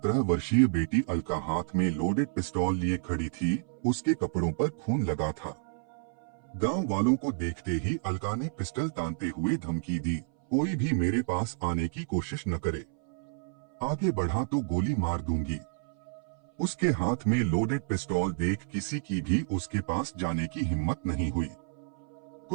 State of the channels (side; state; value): left; silent; 58 dB below the other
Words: वर्षीय बेटी अलका हाथ में लोडेड पिस्तौल लिए खड़ी थी। उसके कपड़ों पर खून लगा था। गांव वालों को देखते ही अलका ने पिस्टल तानते हुए धमकी दी, कोई भी मेरे पास आने की कोशिश न करे, आगे बढ़ा तो गोली मार दूंगी। उसके हाथ में लोडेड पिस्तौल देख किसी की भी उसके पास जाने की हिम्मत नहीं हुई।